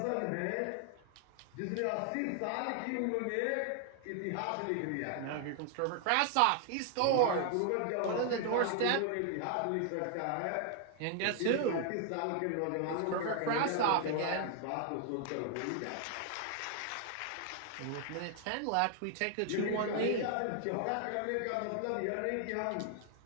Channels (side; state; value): both; different; correlation 0.00